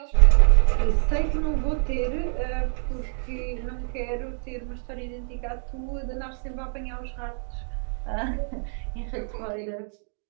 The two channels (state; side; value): silent; left; digital silence